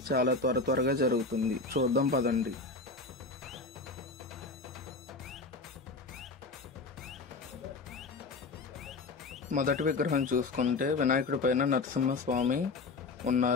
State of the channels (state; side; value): quieter; right; 3.8 dB